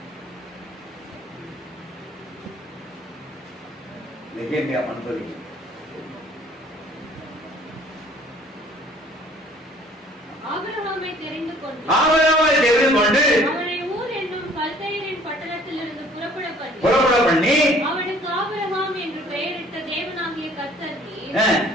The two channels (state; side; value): normal; both; correlation 0.55